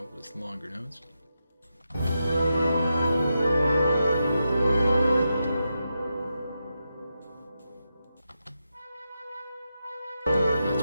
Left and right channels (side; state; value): both; inverted; correlation -0.87